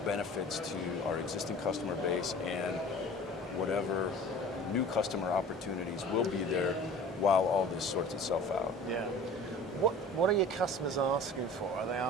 benefits to our existing customer base, and whatever new customer opportunities will be there while all this sorts itself out. Yeah. What are your customers asking for? Are they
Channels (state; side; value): normal; both; correlation 0.42